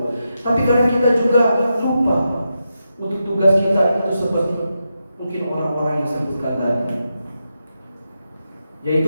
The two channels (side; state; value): both; inverted; correlation -0.87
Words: Tapi kadang kita juga lupa untuk tugas kita itu seperti mungkin orang-orang yang sebutkan tadi,